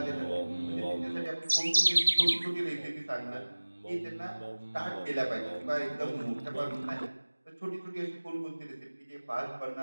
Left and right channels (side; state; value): both; inverted; correlation -1.00